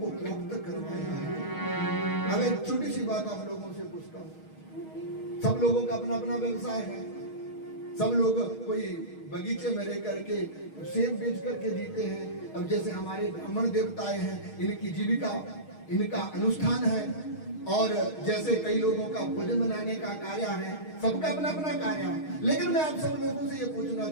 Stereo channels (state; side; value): late; right; 6.4 ms